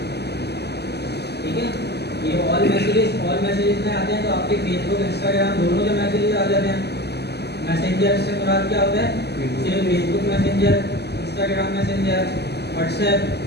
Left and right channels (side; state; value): right; late; 0.48 ms